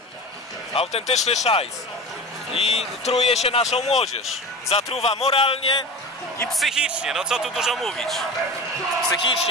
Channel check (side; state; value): both; normal; correlation 0.32